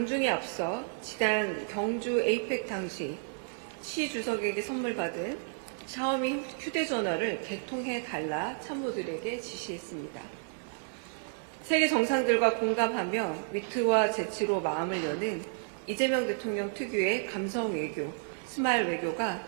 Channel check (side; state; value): left; silent; digital silence